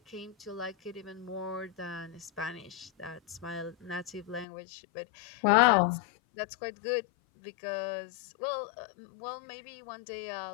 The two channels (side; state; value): right; drops out; at 4.5 s